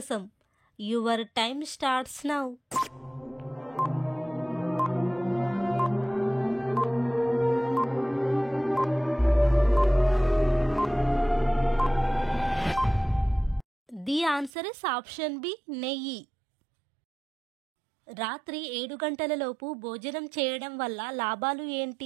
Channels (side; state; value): left; drops out; at 14.5 s